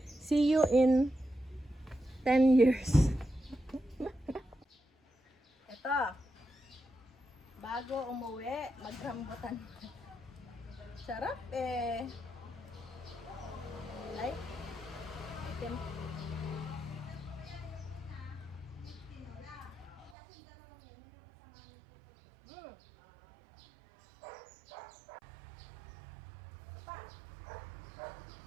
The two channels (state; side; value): drops out; left; at 20.2 s